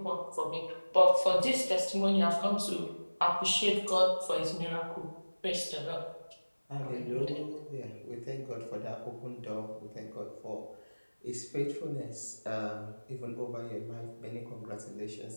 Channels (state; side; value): inverted; both; correlation -1.00